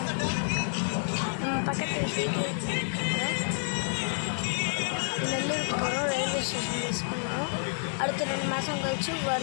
பக்கத்தில் நெல்லூருக்கு போகிறோம். ரயில்வே ஸ்டேஷன் மிஸ் பண்ணுறோம். அடுத்த 2 மாதம் கழிச்சு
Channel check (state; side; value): silent; right; digital silence